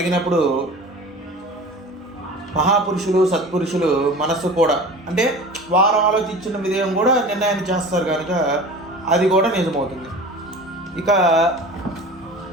మహాపురుషులు, సత్పురుషులు మనస్సు కూడా అంటే వారు ఆలోచించిన విధేయం కూడా నిర్ణయాన్ని చేస్తారు కనుక అది కూడా నిజమవుతుంది. ఇక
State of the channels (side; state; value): both; normal; correlation 0.38